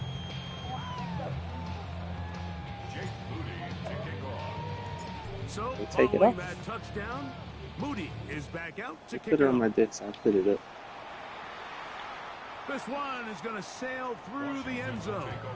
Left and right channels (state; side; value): identical; both; correlation 1.00